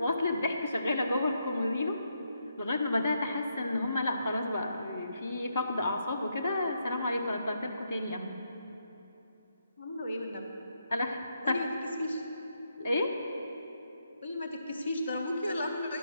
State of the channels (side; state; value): both; inverted; correlation -0.79